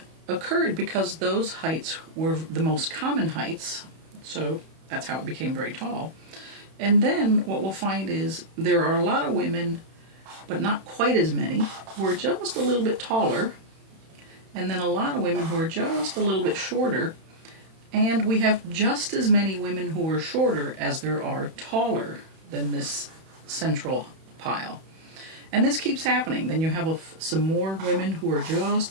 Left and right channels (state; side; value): late; left; 31 ms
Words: occurred because those heights were the most common heights, so that's how it became very tall. And then what we'll find is there are a lot of women, but not quite as many, who are just a little bit taller, and then a lot of women who are just a little bit shorter, and we have just as many women who are shorter as there are taller than this central pile. And this keeps happening. Then you have some more women who are just